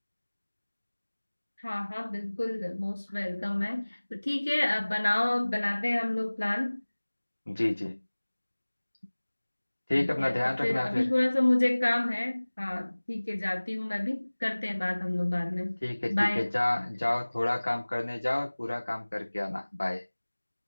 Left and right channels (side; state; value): both; inverted; correlation -1.00